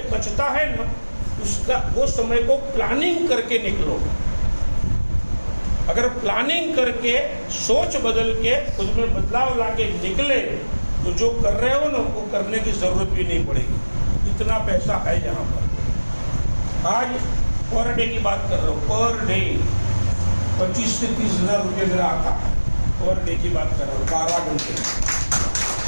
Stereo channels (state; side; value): inverted; both; correlation -1.00